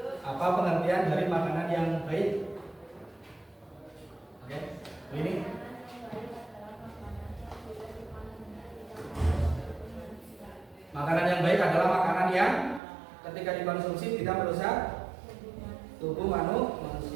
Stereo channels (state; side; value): drops out; left; at 12.8 s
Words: Apa pengertian dari makanan yang baik? Oke, ini makanan yang baik adalah makanan yang ketika dikonsumsi tidak merusak tubuh